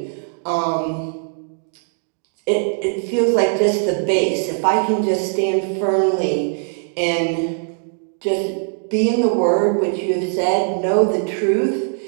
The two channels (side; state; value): left; silent; digital silence